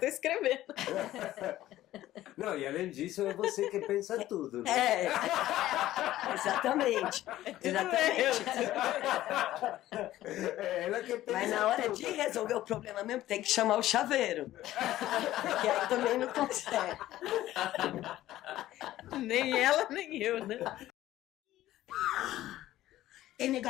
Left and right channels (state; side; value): quieter; right; 14.5 dB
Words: escrevendo. Não, e além disso, é você que pensa tudo. Né? Exatamente. Exatamente. É ela que pensa Mas na hora tudo. de resolver o problema mesmo, tem que chamar o chaveiro. Porque aí também não consegue. Nem ela, nem eu, né? Tem